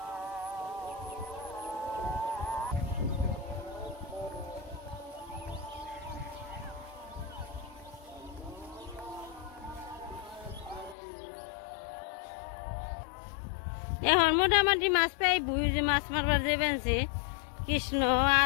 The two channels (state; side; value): drops out; right; at 11.0 s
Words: এখন মোটামুটি মাছ পাই বুঝি যে মাছ মারবার যাবেন কৃষ্ণ